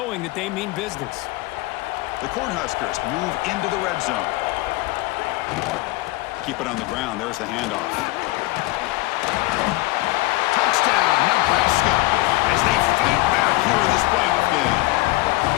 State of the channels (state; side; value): quieter; right; 20.6 dB